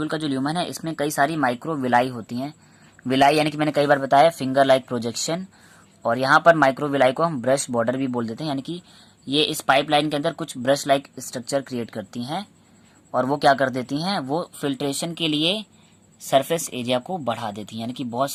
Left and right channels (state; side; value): identical; both; correlation 1.00